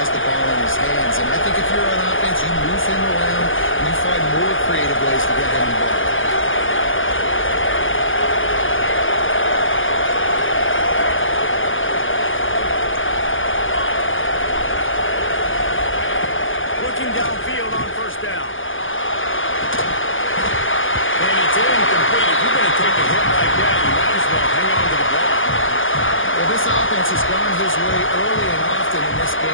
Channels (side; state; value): right; late; 0.58 ms